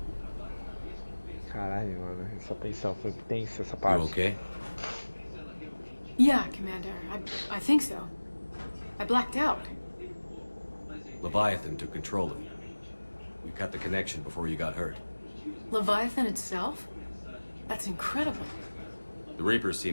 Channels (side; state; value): both; inverted; correlation -1.00